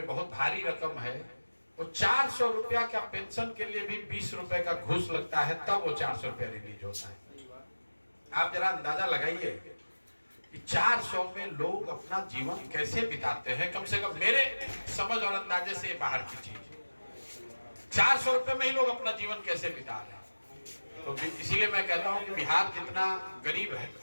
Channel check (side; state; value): both; inverted; correlation -1.00